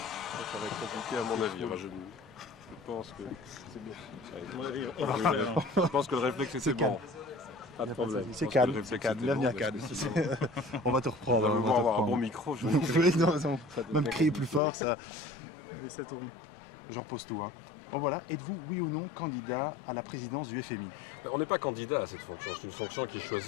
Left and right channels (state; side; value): drops out; right; at 14.6 s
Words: va être compliqué à mon avis. Enfin, je pense que c'est bien. Je pense que le réflexe était bon. Pas de problème. C'est calme, c'est calme, bienvenue à Cannes. On va te reprendre. On va avoir un bon micro. Oui, non, même crier plus fort, ça tourne. Je repose tout. Hein. Bon voilà, êtes-vous oui ou non candidat à la présidence du FMI? On n'est pas candidat à cette fonction, c'est une fonction qui est